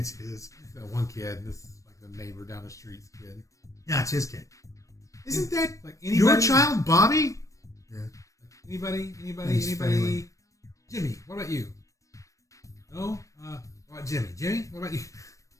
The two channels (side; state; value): right; late; 0.16 ms